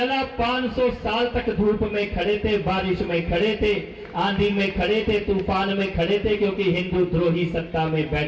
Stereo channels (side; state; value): both; identical; correlation 1.00